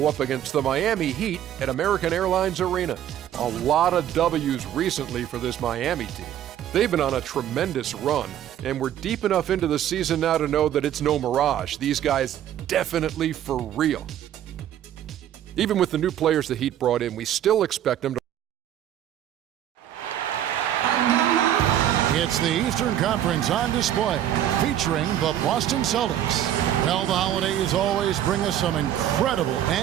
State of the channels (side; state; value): left; quieter; 11.1 dB